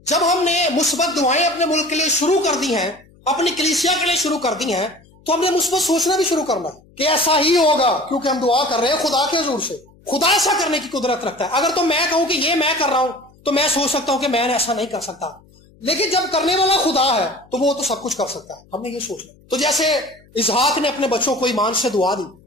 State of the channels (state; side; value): noise; left; hum, 28 dB below the sound